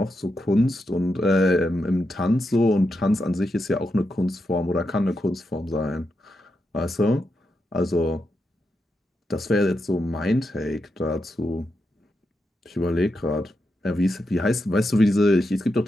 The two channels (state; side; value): normal; both; correlation 0.85